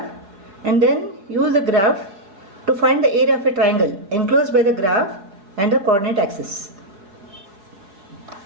and then use the graph to find the area of a triangle enclosed by the graph and the coordinate axis.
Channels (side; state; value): left; late; 5.1 ms